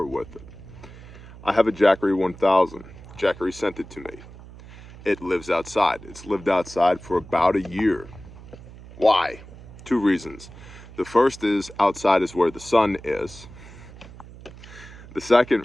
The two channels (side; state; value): right; noise; hum, 17 dB below the sound